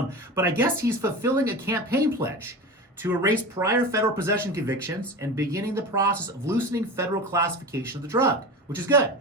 I guess he's fulfilling a campaign pledge to erase prior federal possession convictions and beginning the process of loosening federal classification of the drug, which is good.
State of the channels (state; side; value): normal; both; correlation 0.29